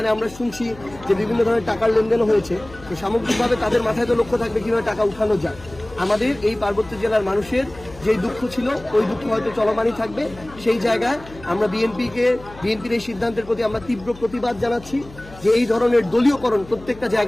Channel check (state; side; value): noise; left; hum, 19 dB below the sound